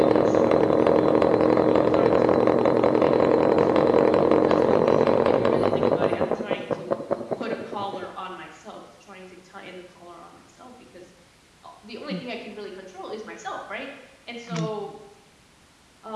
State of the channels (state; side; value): identical; both; correlation 1.00